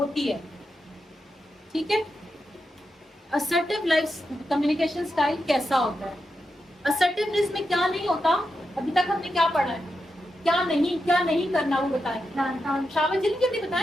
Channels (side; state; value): both; normal; correlation 0.87